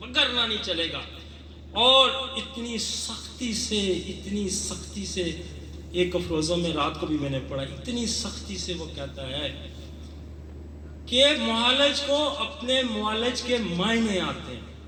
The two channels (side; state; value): both; identical; correlation 1.00